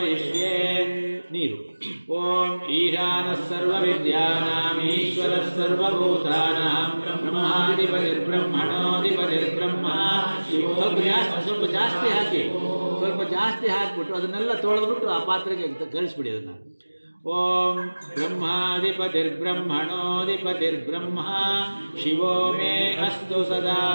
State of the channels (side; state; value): both; inverted; correlation -1.00